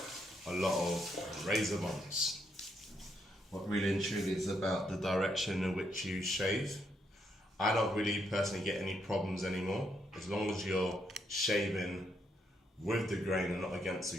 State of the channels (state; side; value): normal; both; correlation 0.77